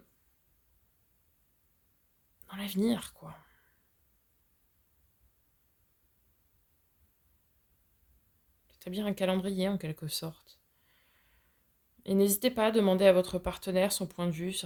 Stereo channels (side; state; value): both; identical; correlation 1.00